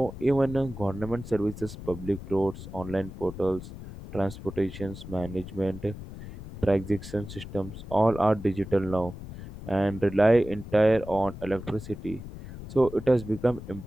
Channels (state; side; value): noise; left; rumble, 12 dB below the sound